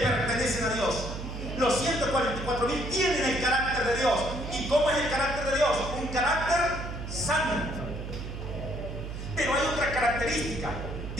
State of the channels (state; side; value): noise; right; hum, 7 dB below the sound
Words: a Dios. Los 144,000 tienen el carácter de Dios. ¿Y cómo es el carácter de Dios? Un carácter santo. Pero hay otra característica.